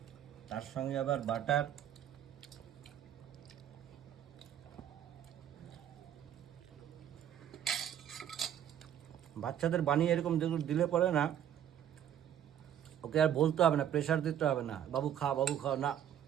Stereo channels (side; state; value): left; quieter; 10.2 dB